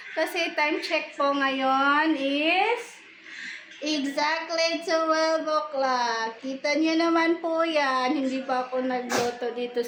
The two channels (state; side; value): identical; both; correlation 1.00